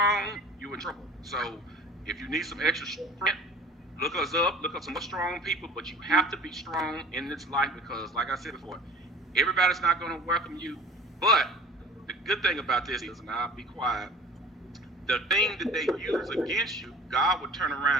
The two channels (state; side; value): normal; both; correlation 0.44